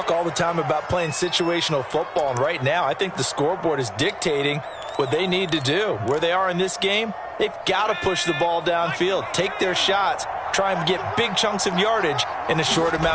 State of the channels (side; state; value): both; identical; correlation 1.00